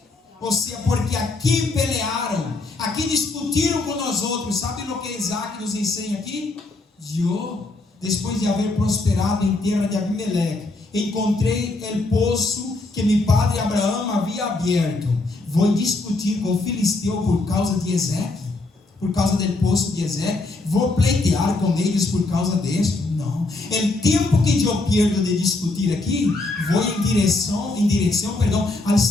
Ou seja, porque aqui pelearam, aqui discutiram com nós outros. Sabe o que Isaac nos ensina aqui? Eu, depois de haver prosperado em terra de Abimeleque, encontrei o poço que meu padre Abraão havia aberto. Vou discutir com o filisteu por causa de Ezeque, por causa do poço de Ezeque. Vou pleitear com eles por causa disso. Não. O tempo que eu perdo de discutir aqui, vou em direção, ao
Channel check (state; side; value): quieter; right; 3.2 dB